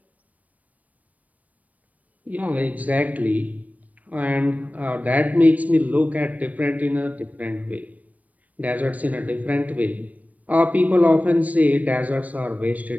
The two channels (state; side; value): late; left; 0.072 ms